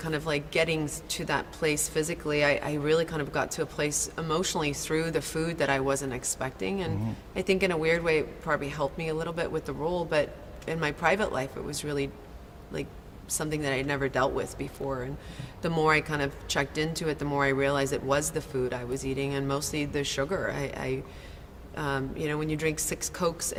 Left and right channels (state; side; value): identical; both; correlation 1.00